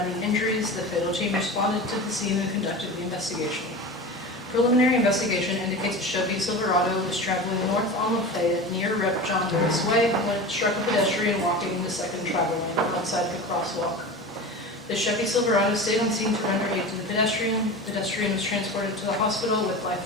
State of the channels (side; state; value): both; normal; correlation 0.30